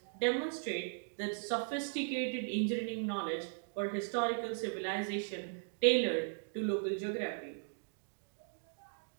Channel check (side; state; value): left; silent; digital silence